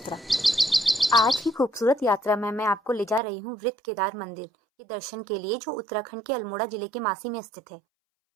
आज की खूबसूरत यात्रा में मैं आपको ले जा रही हूं वृत्त केदार मंदिर के दर्शन के लिए, जो उत्तराखंड के अल्मोड़ा जिले के मासी में स्थित है।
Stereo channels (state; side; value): drops out; left; at 3.2 s